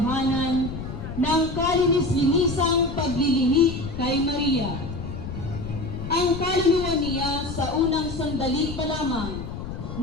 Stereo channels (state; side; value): noise; left; rumble, 8 dB below the sound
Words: ng kalinis-linisang paglilihi kay Maria. Ang kaluluwa niya sa unang sandali pa lamang